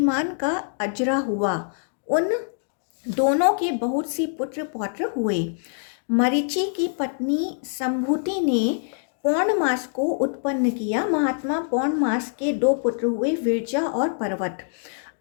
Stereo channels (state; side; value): silent; right; digital silence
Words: का अजरा हुआ। उन दोनों के बहुत सी पुत्र पौत्र हुए। मरीचि की पत्नी संभूति ने पौन मास को उत्पन्न किया। महात्मा पौन मास के दो पुत्र हुए, विरजा और पर्वत।